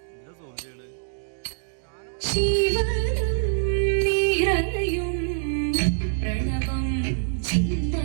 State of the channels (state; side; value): silent; left; digital silence